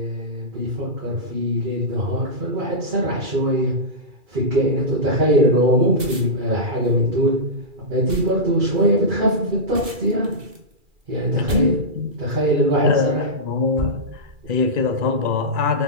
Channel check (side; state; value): left; late; 2.4 ms